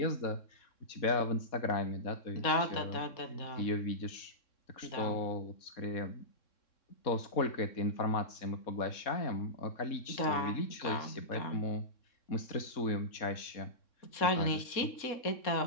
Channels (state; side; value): late; right; 3.6 ms